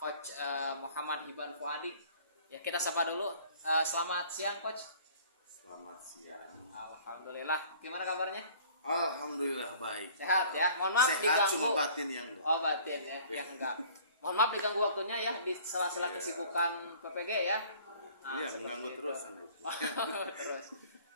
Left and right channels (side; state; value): both; inverted; correlation -0.52